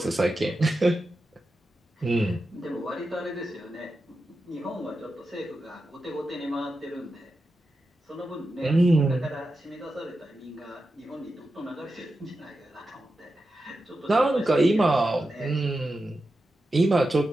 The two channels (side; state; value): both; normal; correlation 0.90